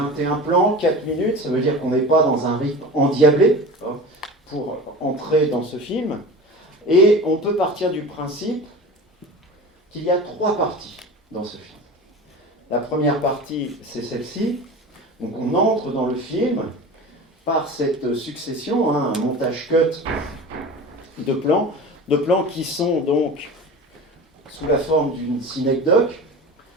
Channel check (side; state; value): both; normal; correlation 0.33